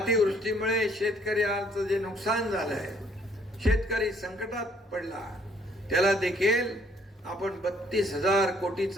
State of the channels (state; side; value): normal; both; correlation 0.64